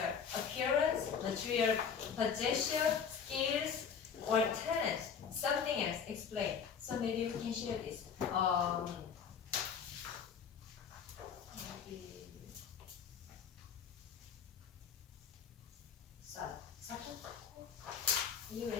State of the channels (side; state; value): right; quieter; 6.9 dB